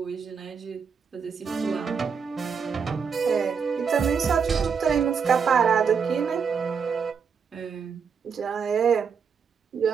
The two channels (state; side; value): quieter; left; 6.3 dB